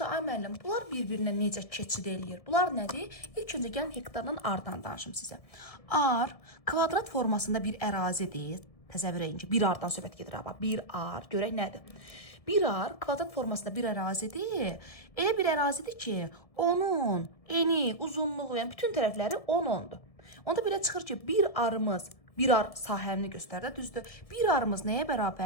ay müəllim, bunlar bir-birinə necə keçid eləyir? Bunlar nədir? İlk öncə gəlin hektardan ardan danışım sizə. Ar kvadrat formasında bir ərazidir. Təsəvvür edin ki, bir ardan söhbət gedir. Bir ar, görək nədir? Bir ar kvadrat formasında bir ərazidir. Elə bir ərazidir ki, onun eni, uzunluğu, yəni bütün tərəfləri 10-10'dur. Onda belə çıxır ki, bir ar sahəni göstərdə, düzdür? Bir arımız nəyə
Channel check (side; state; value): right; late; 1.7 ms